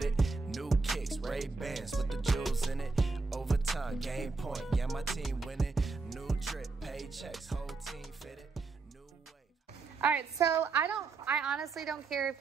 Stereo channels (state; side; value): quieter; left; 4.1 dB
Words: it. New kicks, Ray-Bans with the jewels in it. Overtime, game point, yeah, my team winning. New drip, paychecks, whole team fitted. All right, so I honestly don't care if